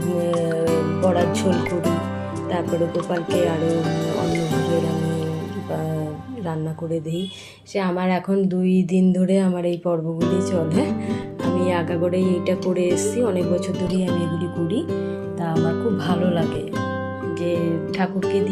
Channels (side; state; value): both; identical; correlation 1.00